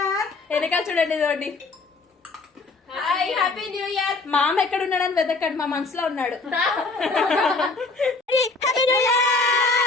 వెనకాల చూడండి చూడండి. Happy new year. మామ ఎక్కడ ఉన్నాడని వెతకండి, మా మనసులో ఉన్నాడు.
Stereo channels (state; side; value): quieter; right; 3.7 dB